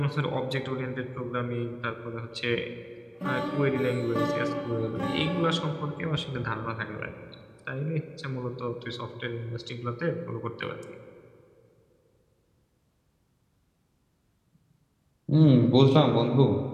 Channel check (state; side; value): identical; both; correlation 1.00